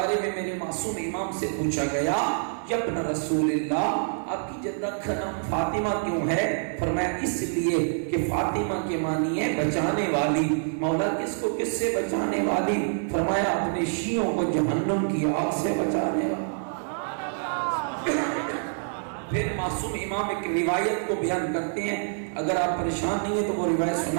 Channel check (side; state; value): left; silent; 57 dB below the other